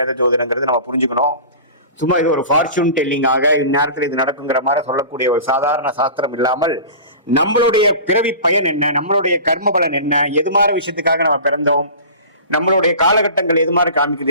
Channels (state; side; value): inverted; both; correlation -0.37